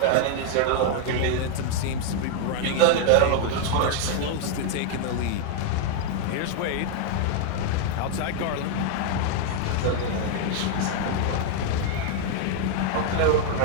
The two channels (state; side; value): different; both; correlation 0.00